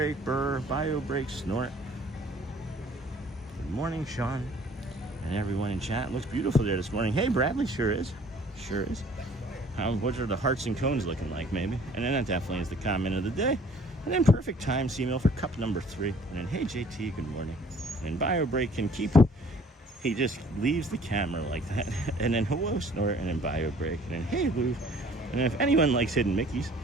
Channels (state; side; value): normal; both; correlation 0.54